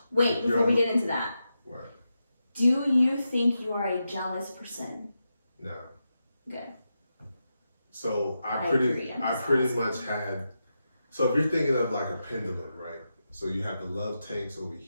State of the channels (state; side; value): inverted; both; correlation -0.88